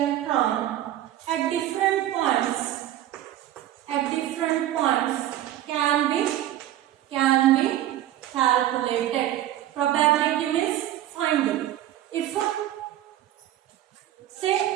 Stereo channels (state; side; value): quieter; left; 13.0 dB